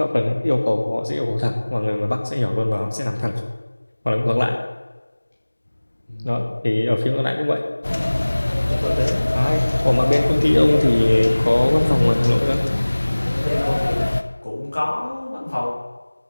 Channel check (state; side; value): inverted; both; correlation -1.00